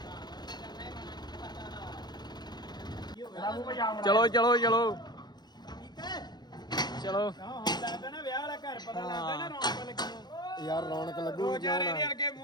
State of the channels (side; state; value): right; late; 0.20 ms